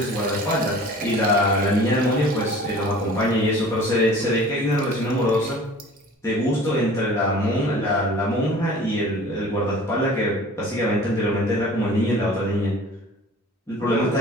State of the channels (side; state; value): both; normal; correlation 0.45